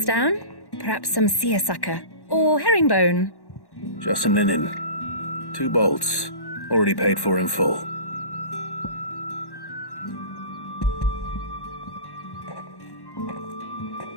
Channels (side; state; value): right; late; 1.1 ms